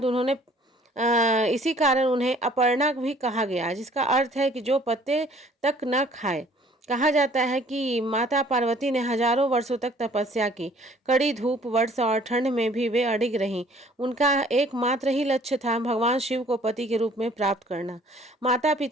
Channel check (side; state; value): both; normal; correlation 0.56